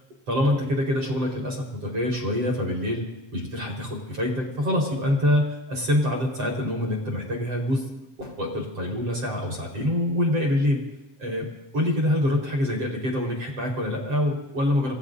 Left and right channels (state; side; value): late; left; 7.7 ms